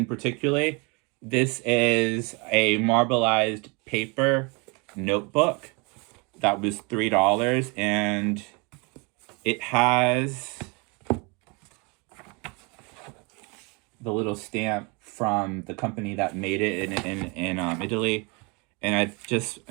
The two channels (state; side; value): quieter; left; 30.4 dB